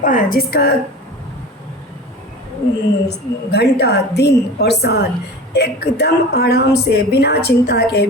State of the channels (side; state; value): both; normal; correlation 0.35